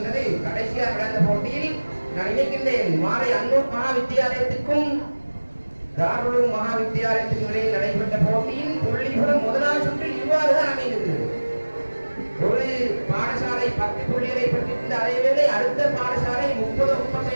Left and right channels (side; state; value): both; inverted; correlation -1.00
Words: கடைசியாக நடந்த போட்டியில் நான் நினைக்கின்றேன் மாலை அன்னூர் மகா வித்தியாலயத்துக்கும் தாருலும் மகா வித்தியாலயத்துக்கும் இடையில் நடைபெற்ற போட்டியின் புள்ளிபுரம் முதலாவது சுற்றில் இவ்வாறுதான் அமைந்தது. ஒரு பாடசாலை 10 புள்ளிகளை பெற்றிருந்த அதேவேளை அடுத்த பாடசாலை